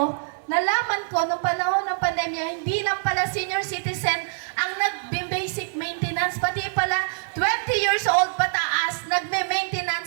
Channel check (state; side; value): silent; left; digital silence